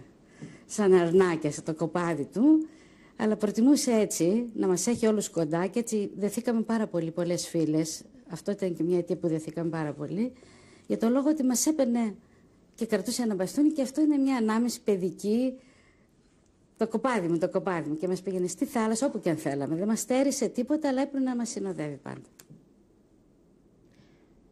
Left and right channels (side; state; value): both; identical; correlation 1.00